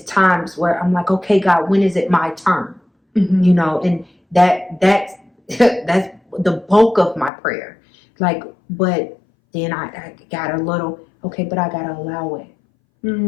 times where I'm like, okay, God, when is it my turn? You know, and that's the bulk of my prayer. Like, but then I got a little, okay, but I gotta allow it.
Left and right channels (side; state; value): right; drops out; at 7.3 s